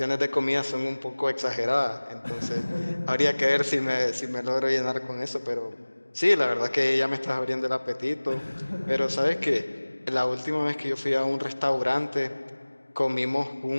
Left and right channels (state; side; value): inverted; both; correlation -1.00